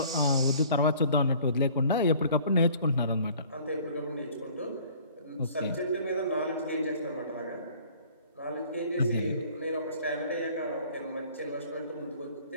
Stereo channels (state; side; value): inverted; both; correlation -0.53